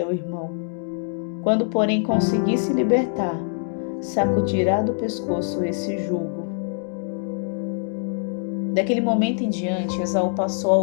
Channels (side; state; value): right; silent; digital silence